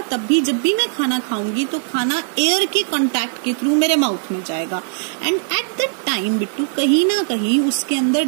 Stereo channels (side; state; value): left; silent; digital silence